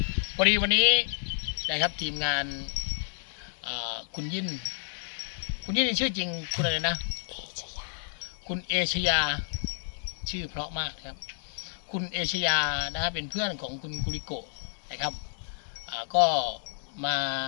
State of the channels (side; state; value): right; silent; digital silence